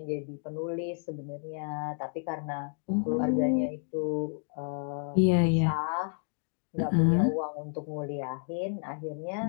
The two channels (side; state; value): right; silent; 57 dB below the other